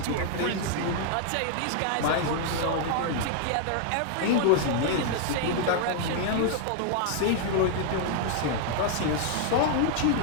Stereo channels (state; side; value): different; both; correlation 0.00